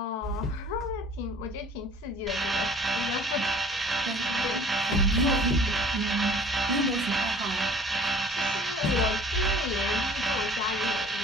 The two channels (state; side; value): normal; both; correlation 0.50